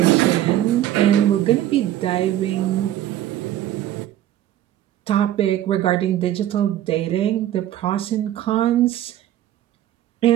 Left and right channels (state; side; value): quieter; left; 12.6 dB